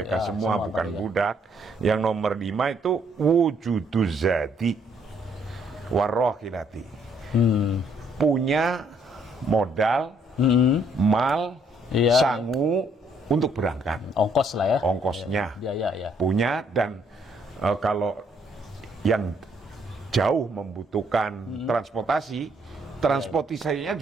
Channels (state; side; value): normal; both; correlation 0.68